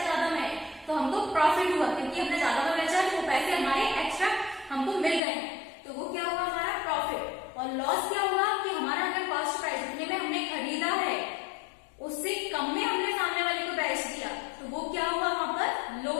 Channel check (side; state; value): right; drops out; at 5.2 s